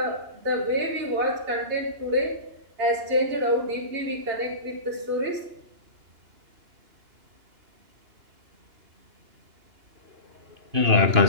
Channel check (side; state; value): left; late; 2.9 ms